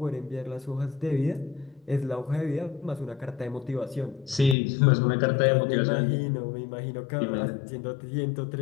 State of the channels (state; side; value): drops out; right; at 4.5 s